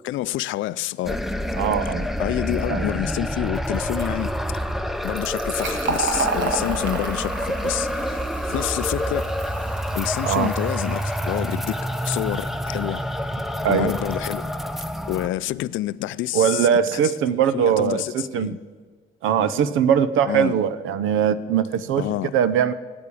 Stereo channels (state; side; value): normal; both; correlation 0.27